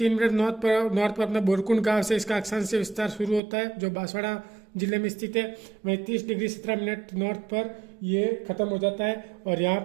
मिनट नॉर्थ पर अपना बोरकुंड गांव से इसका अक्षांशीय विस्तार शुरू होता है, जो बांसवाड़ा जिले में स्थित है। वहीं 30 डिग्री 17 मिनट नॉर्थ पर ये खत्म हो जाता है और यहाँ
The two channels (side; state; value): left; drops out; at 3.4 s